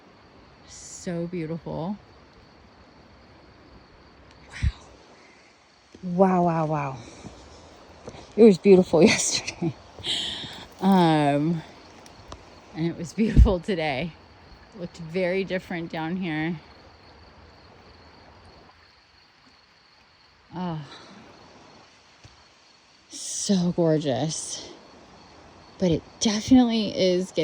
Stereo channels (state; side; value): identical; both; correlation 1.00